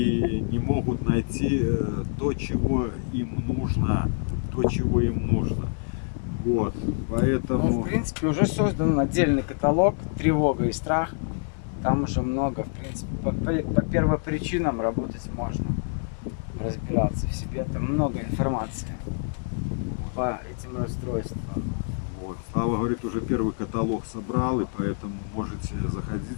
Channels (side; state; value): right; silent; 61 dB below the other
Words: не могут найти то, чего им нужно. Вот, поэтому... Ну, в принципе, уже создан отдельный каталог «Тревога и страх». Там уже много, в принципе, по первопричинам работать можно, разбираться в себе. Там много информации по этим расстройствам. Вот. Слава говорит, уже первый каталог собрал, и поэтому можете